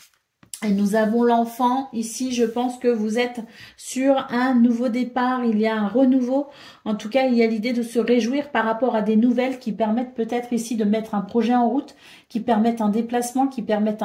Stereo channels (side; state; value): both; identical; correlation 1.00